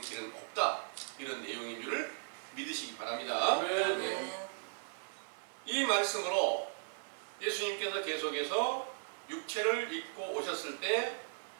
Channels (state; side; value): silent; left; digital silence